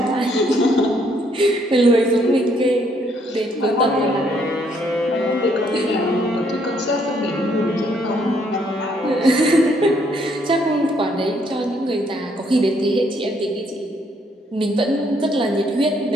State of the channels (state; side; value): normal; both; correlation 0.69